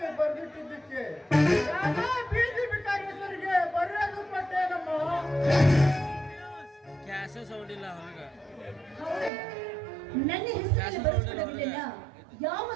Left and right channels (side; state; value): left; drops out; at 9.3 s